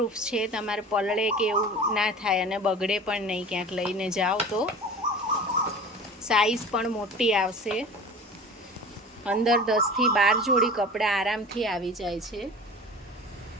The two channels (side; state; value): both; normal; correlation 0.37